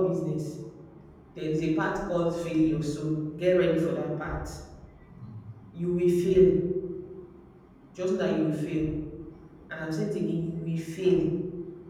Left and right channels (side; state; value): both; identical; correlation 1.00